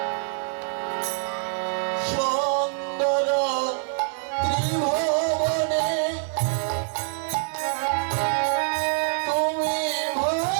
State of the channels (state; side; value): silent; left; digital silence